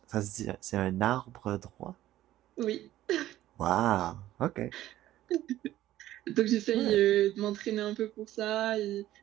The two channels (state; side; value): quieter; left; 14.1 dB